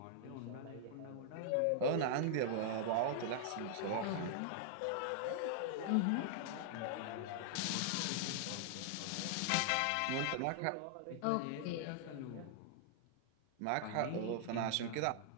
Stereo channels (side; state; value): both; different; correlation -0.01